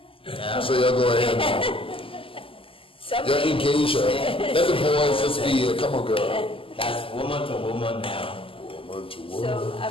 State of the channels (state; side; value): late; right; 0.26 ms